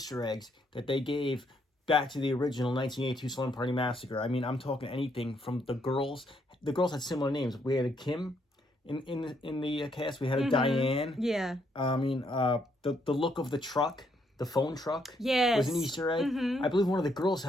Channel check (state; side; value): normal; both; correlation 0.73